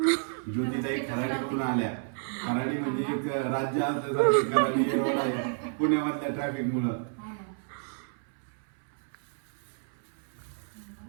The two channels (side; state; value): left; silent; 58 dB below the other